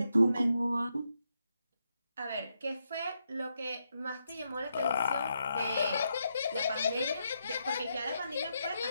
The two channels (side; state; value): both; inverted; correlation -0.82